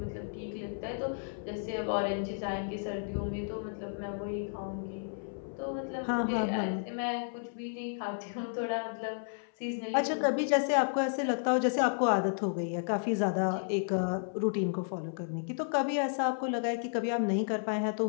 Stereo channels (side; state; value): right; silent; 55 dB below the other